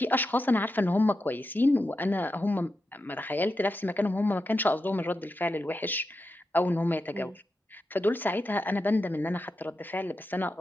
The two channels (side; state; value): both; normal; correlation 0.89